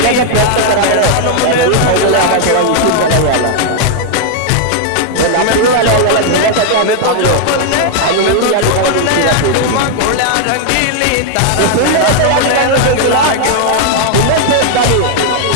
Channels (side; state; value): both; different; correlation 0.00